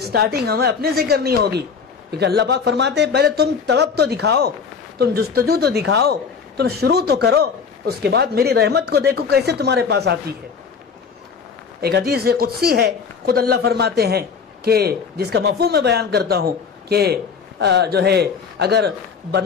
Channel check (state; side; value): quieter; right; 5.9 dB